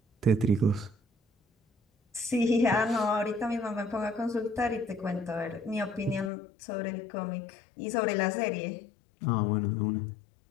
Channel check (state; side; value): drops out; right; at 6.3 s